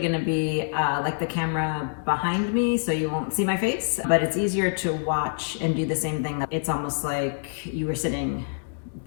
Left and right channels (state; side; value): silent; right; digital silence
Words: to be like the camera behind me, so you won't see my face, but it's easier to watch and do the same thing. It's almost like you were sitting